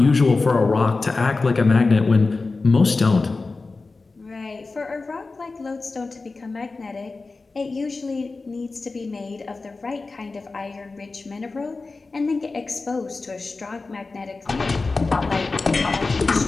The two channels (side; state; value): right; quieter; 3.8 dB